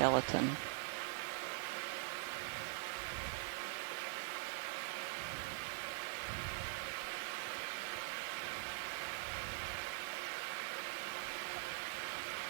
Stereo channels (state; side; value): silent; left; digital silence